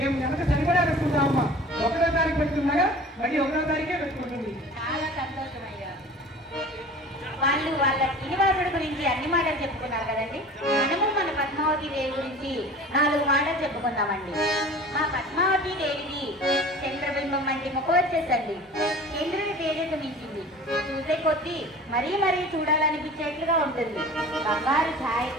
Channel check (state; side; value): normal; both; correlation 0.41